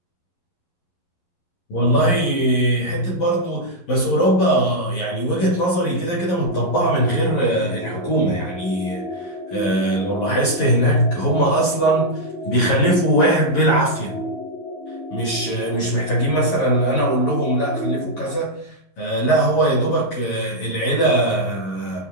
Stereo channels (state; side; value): late; right; 11 ms